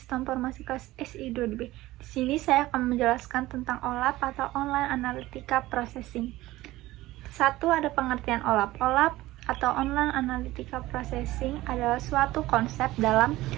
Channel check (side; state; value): left; quieter; 17.4 dB